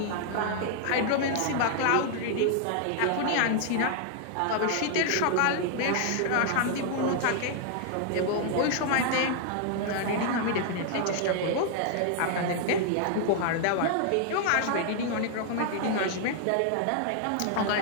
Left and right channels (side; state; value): both; different; correlation 0.00